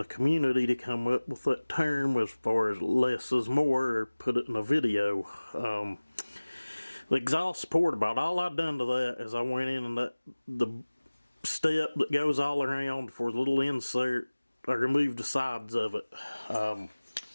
community to come up with that term as far as less is more, or put it in a video. The exhaust port, about all I done to that is I went in and the step that goes all around for the little insert, I removed the sides of it. I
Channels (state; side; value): inverted; both; correlation -1.00